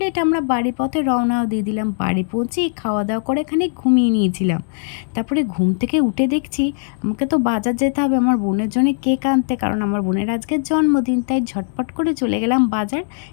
আমরা বাড়ি পথে রওনাও দিয়ে দিলাম। বাড়ি পৌঁছেই খাওয়া দাওয়া করে এখানে ঘুমিয়ে নিয়েছিলাম। তারপরে ঘুম থেকে উঠে দেখছি আমাকে তো বাজার যেতে হবে আমার বোনের জন্য কেক আনতে, কারণ আমার বোনের আজকে জন্মদিন। তাই ঝটপট করে চলে গেলাম বাজার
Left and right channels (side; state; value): right; silent; 66 dB below the other